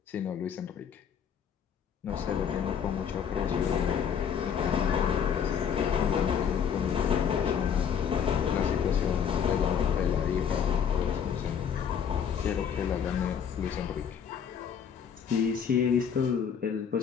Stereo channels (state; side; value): quieter; right; 7.7 dB